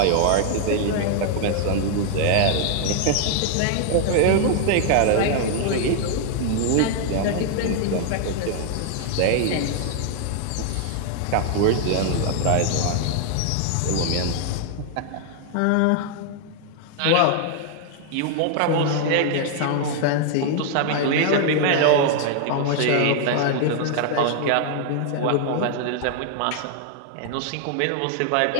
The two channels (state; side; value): different; both; correlation 0.00